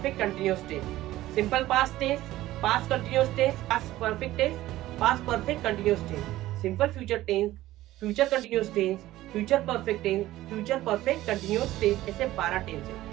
continuous tense, simple past tense, past continuous tense, past perfect tense, past perfect continuous tense, simple future tense, future continuous tense, future perfect tense, future perfect continuous tense. ऐसे 12 tense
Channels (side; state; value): left; quieter; 15.7 dB